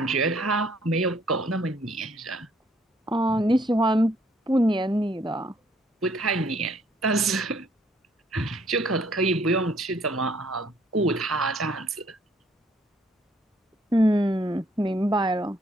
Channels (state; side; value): normal; both; correlation 0.64